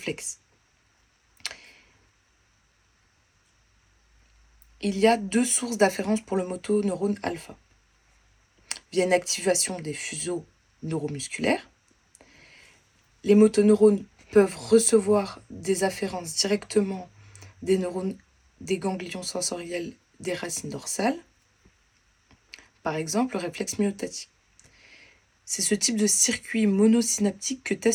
? il y a deux sources d'afférence pour le motoneurone alpha. Via une activation des fuseaux neuromusculaires, les motoneurones peuvent recevoir des afférences directement des neurones des ganglions sensoriels des racines dorsales, par exemple le réflexe myotatique. C'est ce type de circuit monosynaptique que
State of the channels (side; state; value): both; identical; correlation 1.00